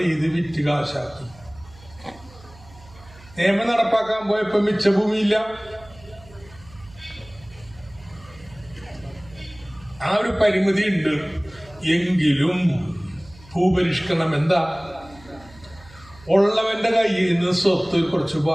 ചെയ്ത് വിറ്റ് കാശാക്കി. നിയമം നടപ്പാക്കാൻ പോയപ്പോ മിച്ചഭൂമിയില്ല. ആ ഒരു പരിമിതി ഉണ്ട്. എങ്കിലും ഭൂപരിഷ്കരണം എന്താ? ഉള്ളവന്റെ കയ്യിൽ നിന്ന് സ്വത്ത് കുറച്ച്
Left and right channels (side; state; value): right; noise; hum, 23 dB below the sound